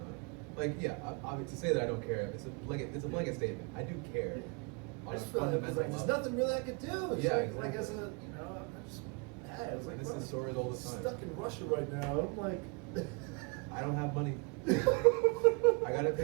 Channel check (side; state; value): left; quieter; 32.8 dB